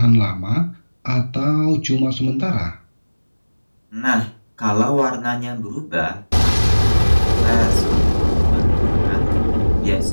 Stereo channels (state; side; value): inverted; both; correlation -1.00